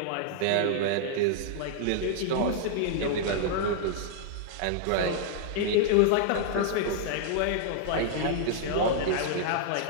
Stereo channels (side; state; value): both; different; correlation -0.01